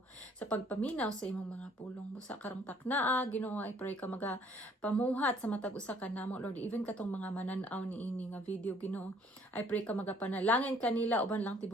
sa imong mga pulong busa karong taknaa Ginoo. I pray ka pamuhat sa matag usa ka namo Lord, even katong mga manan-aw ni ini nga video Ginoo. I pray ka magapanalangin kanila uban lang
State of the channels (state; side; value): normal; both; correlation 0.60